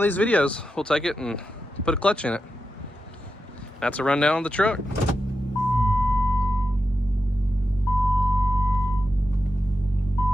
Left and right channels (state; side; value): normal; both; correlation 0.89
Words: these videos, we'll take it and put a clutch in it. That's a rundown of the truck.